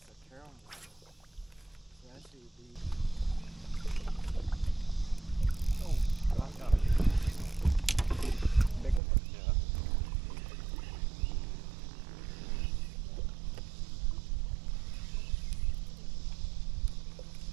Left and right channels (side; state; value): left; drops out; at 9.0 s